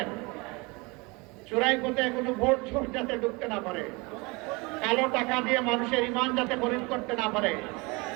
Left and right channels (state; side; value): quieter; left; 26.7 dB